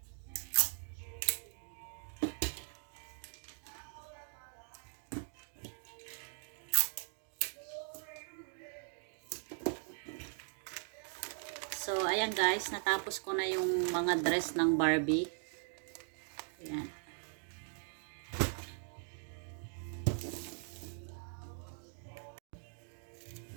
So, ayan guys, natapos ko na yung mga dress ng Barbie. Ayan.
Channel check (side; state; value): left; silent; 51 dB below the other